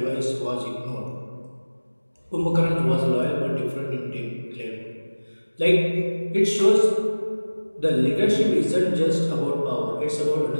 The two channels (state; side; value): inverted; both; correlation -1.00